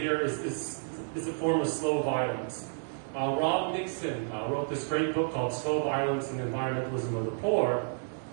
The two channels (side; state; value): left; silent; digital silence